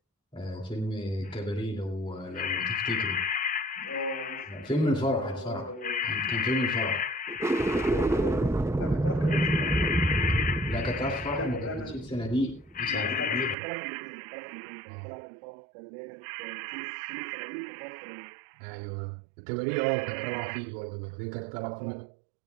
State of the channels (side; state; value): left; drops out; at 13.6 s